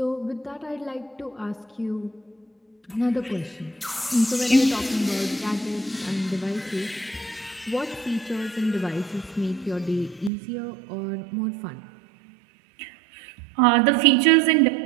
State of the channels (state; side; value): drops out; left; at 10.3 s